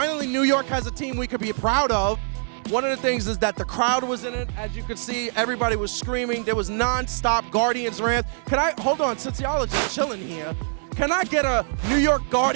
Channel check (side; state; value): left; silent; digital silence